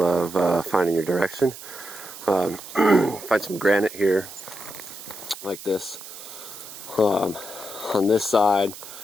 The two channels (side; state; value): right; noise; hiss, 14 dB below the sound